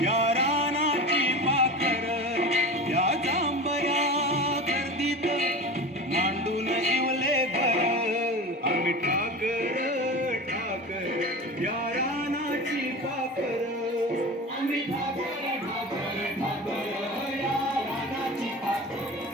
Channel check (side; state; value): both; normal; correlation 0.31